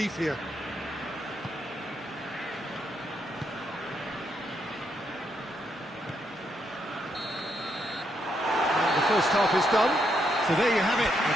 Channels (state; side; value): normal; both; correlation 0.78